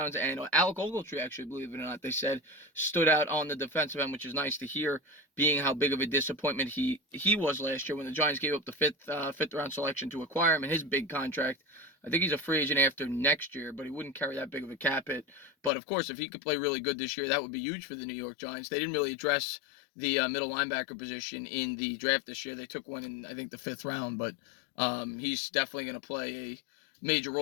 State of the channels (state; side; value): drops out; right; at 15.7 s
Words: and Alec Ogletree, actually, believe it or not, they said, stood out on the defensive end, which is nice to hear, being how big of a disappointment he was last year when the Giants gave up the fifth round selection to acquire him and his big contract. I think he's a free agent after next year, but he wouldn't carry that big of a cap hit. But of course, if he could play really good this year, that would be huge for the New York Giants. They didn't really address the middle linebacker position in the draft this year. They took one in, I think, the 5th round, but he's definitely going to play a major